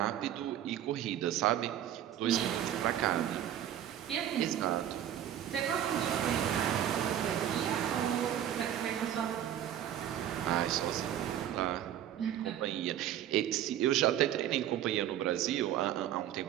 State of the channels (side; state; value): left; quieter; 11.0 dB